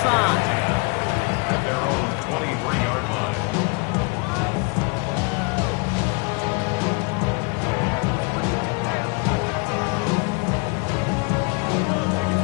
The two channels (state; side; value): quieter; right; 30.4 dB